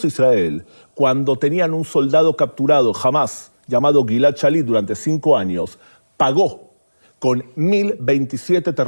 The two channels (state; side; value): inverted; both; correlation -1.00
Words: Israel, cuando tenían un soldado capturado, Hamás, llamado Gilad Shalit, durante 5 años, pagó con 1.027